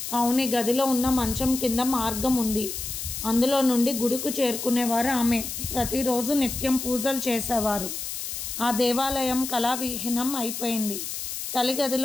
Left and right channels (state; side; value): noise; left; hiss, 6 dB below the sound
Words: అవును, గదిలో ఉన్న మంచం కింద మార్గం ఉంది. అందులో నుండి గుడికి చేరుకునేవారు ఆమె. ప్రతిరోజు నిత్యం పూజలు చేసేవారు. ఆ దేవాలయం కళావిహీనం అయిపోయింది. తల్లి